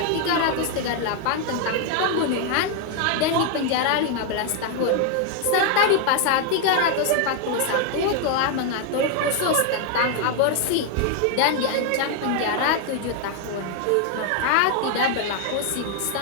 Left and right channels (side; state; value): both; different; correlation 0.01